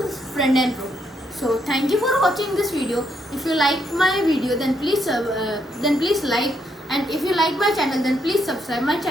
friend and foe. So thank you for watching this video. If you like my video, then please like, and if you like my channel, then please subscribe my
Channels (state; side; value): normal; both; correlation 0.76